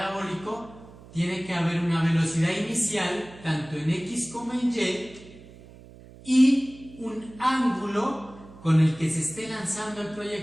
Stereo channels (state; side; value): noise; right; hum, 20 dB below the sound